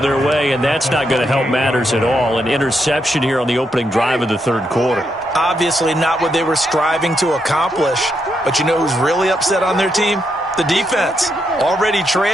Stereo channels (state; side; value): normal; both; correlation 0.80